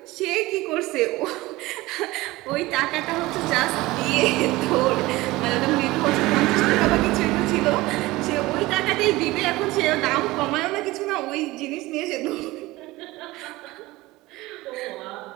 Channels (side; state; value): left; quieter; 19.6 dB